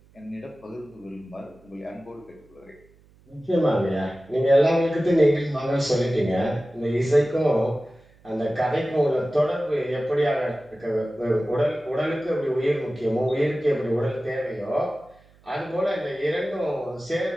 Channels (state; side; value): noise; right; hum, 29 dB below the sound